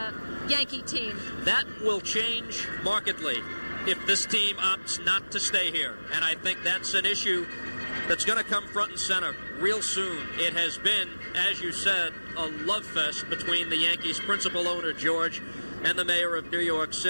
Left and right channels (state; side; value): inverted; both; correlation -1.00